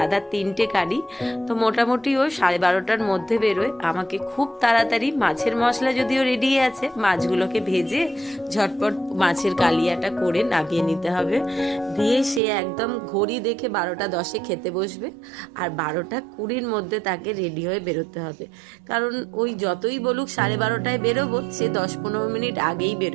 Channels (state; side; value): drops out; left; at 12.4 s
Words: 3টে গাড়ি, তো মোটামুটি ও 12:30টার মধ্যে বেরোয়। আমাকে খুব তাড়াতাড়ি মাছের মশলা যদিও রেডি আছে, মাছগুলোকে ভেজে ঝটপট মাছের কালিয়াটা করে নামিয়ে নিতে হবে। দিয়ে সে একদম ঘড়ি দেখে 12:10 খেতে বসবে, আর 12:20 মধ্যে তাকে রেডি হয়ে বেরোতে হবে। কারণ ওই যতই বলুক 12:30টায় বেরোবো, সে 10-15 মিনিট আগেই